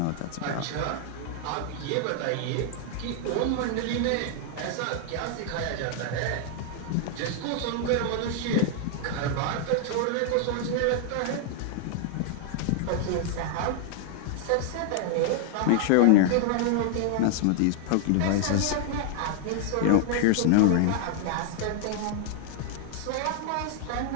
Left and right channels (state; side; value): different; both; correlation 0.00